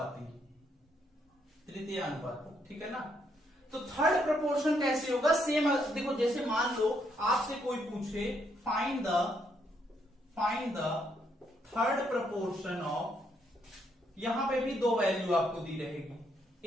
ठीक है ना। तो थर्ड प्रपोर्शन कैसे होगा, सेम देखो, जैसे मान लो आपसे कोई पूछे find the third proportion of, यहां पे भी दो वैल्यू आपको दी रहेगी,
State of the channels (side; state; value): both; normal; correlation 0.74